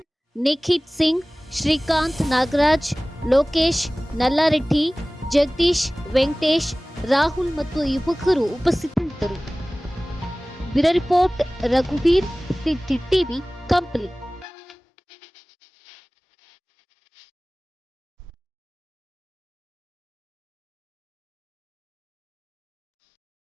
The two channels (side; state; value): both; normal; correlation 0.98